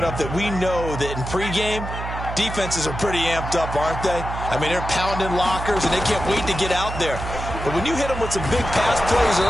that we know that in pregame, defenses are pretty amped up, aren't they? I mean, they're pounding lockers, and they can't wait to get out there. But when you hit them with some big pass plays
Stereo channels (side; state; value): right; noise; hum, 7 dB below the sound